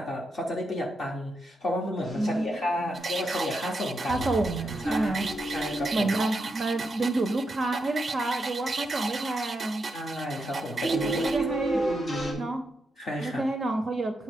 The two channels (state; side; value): normal; both; correlation 0.84